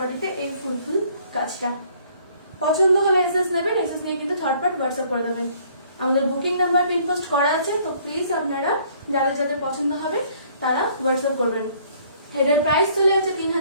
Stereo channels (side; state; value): both; inverted; correlation -0.60